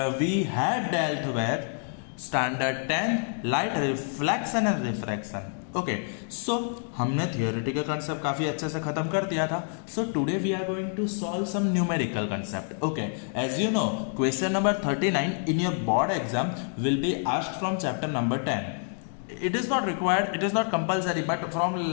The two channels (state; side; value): silent; right; 59 dB below the other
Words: we had dealt with standard 10 light reflection and refraction. Okay so हमने theoretical concept काफ़ी अच्छे से ख़त्म कर दिया था. So today we are going to solve some numerical concept. Okay, as you know question number 39 in your board exam will be asked from chapter number 10. It is not required, it is not compulsory, but from